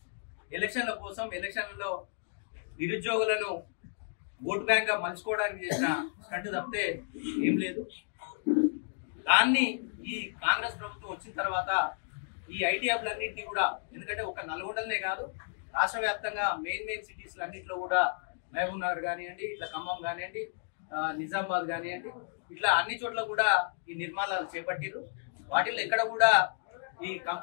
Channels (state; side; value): silent; right; digital silence